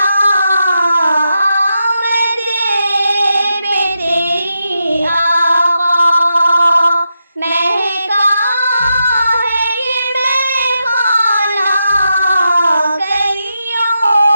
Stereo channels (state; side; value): inverted; both; correlation -0.86